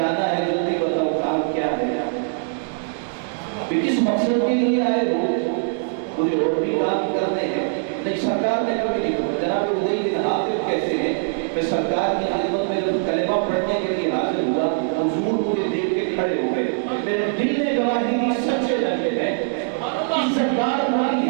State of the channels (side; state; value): left; silent; digital silence